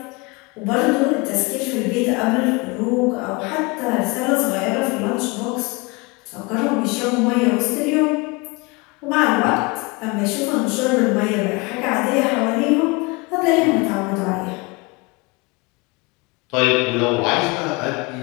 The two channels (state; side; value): quieter; right; 27.0 dB